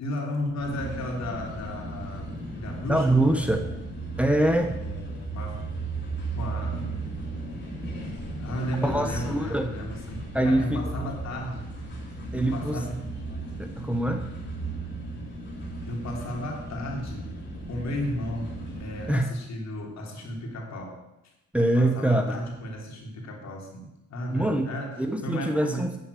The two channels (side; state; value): both; normal; correlation 0.79